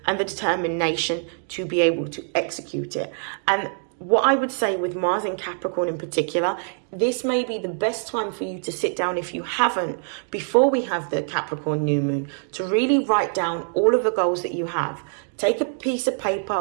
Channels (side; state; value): left; silent; 57 dB below the other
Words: and the determination to be able to execute it. And what I would say with Mars in Capricorn in particular, this may be the best time for you to sit down, if you haven't, before we have the Capricorn new moon, to really write down all of the goals that you have. Take a piece of paper